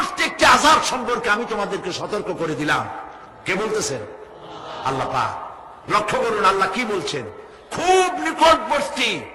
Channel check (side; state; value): both; identical; correlation 1.00